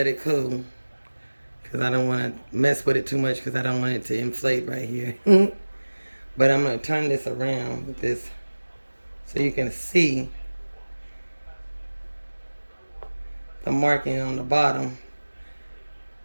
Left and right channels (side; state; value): both; inverted; correlation -1.00